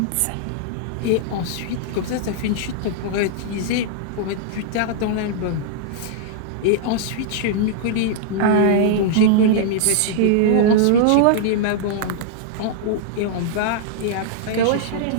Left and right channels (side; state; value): both; different; correlation -0.01